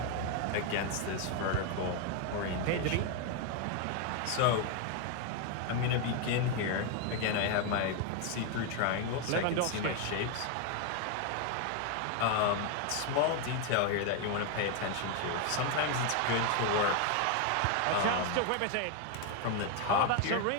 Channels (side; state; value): both; different; correlation 0.01